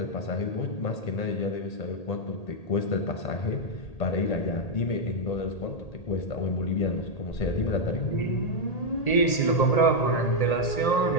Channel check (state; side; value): late; right; 1.8 ms